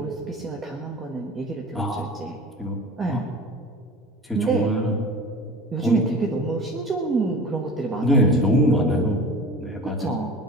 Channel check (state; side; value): normal; both; correlation 0.37